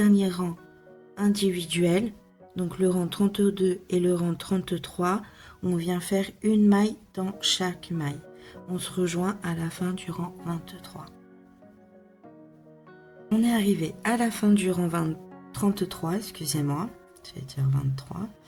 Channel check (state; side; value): identical; both; correlation 1.00